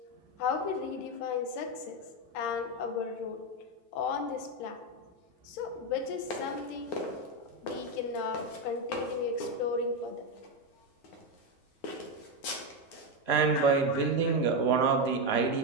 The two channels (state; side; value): late; right; 9.5 ms